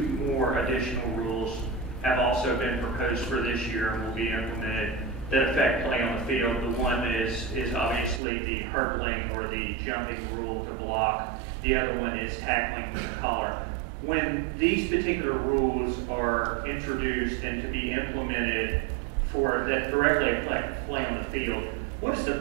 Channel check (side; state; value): left; drops out; at 8.2 s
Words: more additional rules have also been proposed for this year and will be implemented that affect play on the field. The one is obviously the hurdling or the jumping rule to block. The other one is tackling with the collar. When these particular rules are introduced and to be implemented for that directly affect play on the field, what is the